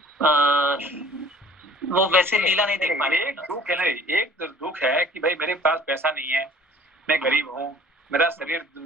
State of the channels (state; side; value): normal; both; correlation 0.51